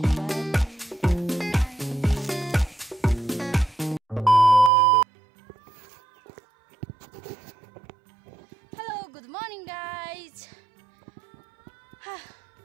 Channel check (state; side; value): drops out; left; at 4.7 s